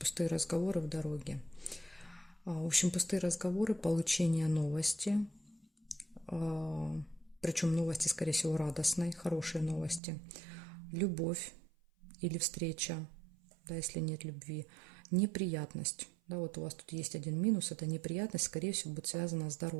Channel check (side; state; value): left; drops out; at 10.0 s